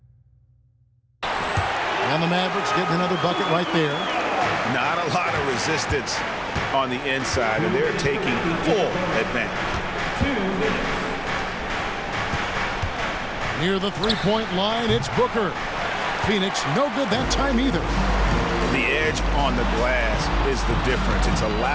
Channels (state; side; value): identical; both; correlation 1.00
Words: And the Mavericks getting another bucket right there. Not a lot of resistance on the inside, and they're taking full advantage. Near the three-point line, it's Booker. Phoenix no good that time either. The edge on the glass is the difference. It's